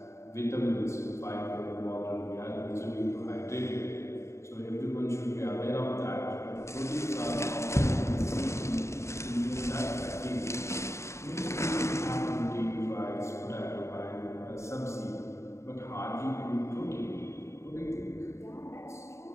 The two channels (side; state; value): right; late; 0.14 ms